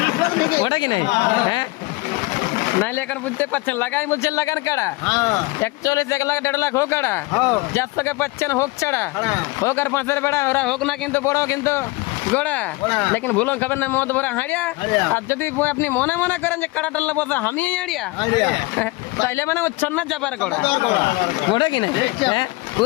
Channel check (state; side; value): quieter; right; 23.2 dB